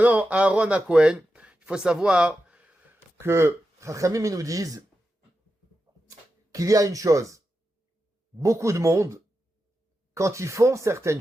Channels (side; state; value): both; normal; correlation 0.89